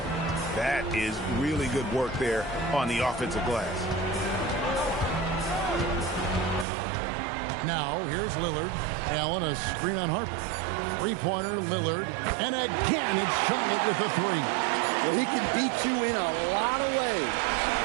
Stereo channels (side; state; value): left; drops out; at 6.7 s